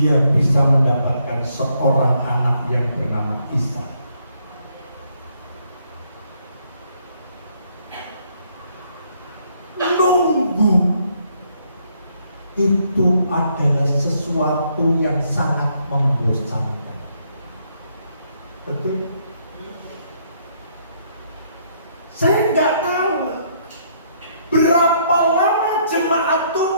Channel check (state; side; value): inverted; both; correlation -0.70